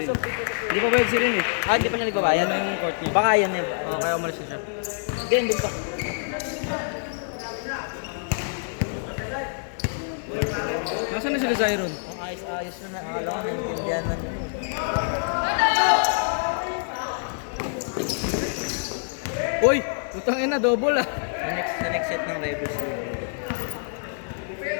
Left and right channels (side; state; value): right; silent; digital silence